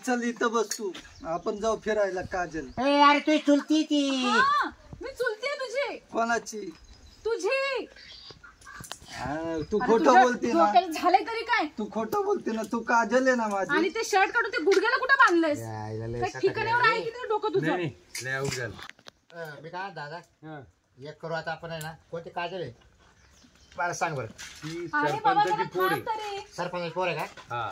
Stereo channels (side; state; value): both; identical; correlation 1.00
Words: चल इथं बस तू. आपण जाऊ फिरायला काजल. ए अरे तू चुलती ती. हा, मी चुलतीये तुझी. कोणाची? तुझी. हा, तू अरे खोटं तुझ्या बोलते ना. डोक्याला झालंय तरी काय? तू खोटं बोलते ना. तू काजल आहे ना माझी. आणि ते शर्ट काढून ते गुडघ्याला कुठे बांधलंयस? यायला लय काय सकाळी ठिकाण्यावर आहे की नाही डोकं नाही तुझं? नाही लय अवघड झालं. मी काय दादा हं. एक करू आता आपण आहे ना. कोणती काजल आहे मला सांग बरं. ती अरे बाबा सरपंचाची जरा पोर थांब आहे तरी. सरपंच पोर आहे का? हा